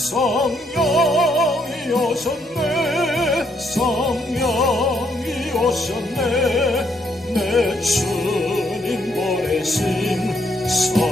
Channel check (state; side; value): normal; both; correlation 0.73